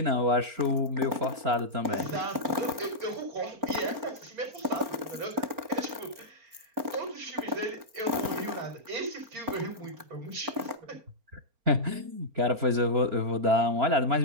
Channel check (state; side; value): late; left; 4.4 ms